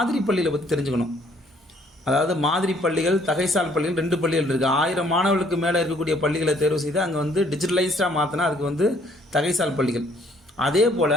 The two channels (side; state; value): both; normal; correlation 0.63